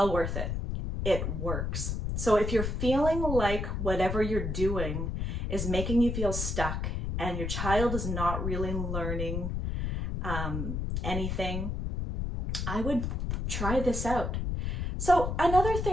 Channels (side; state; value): left; noise; rumble, 2 dB below the sound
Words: worth it. It works. So if you're feeling like whatever you're doing is making you feel stuck and your child is not really learning anything, I would try this out. So another